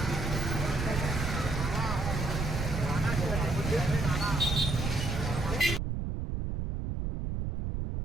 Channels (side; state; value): right; noise; rumble, 2 dB below the sound